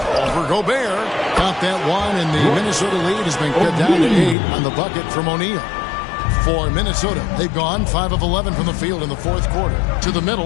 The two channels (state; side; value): drops out; right; at 4.4 s